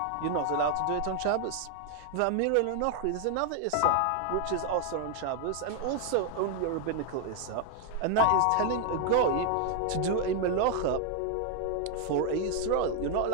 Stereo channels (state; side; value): different; both; correlation 0.00